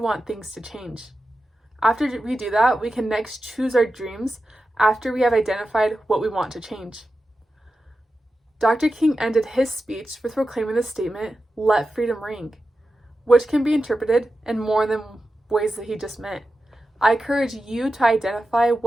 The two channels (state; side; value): normal; both; correlation 0.92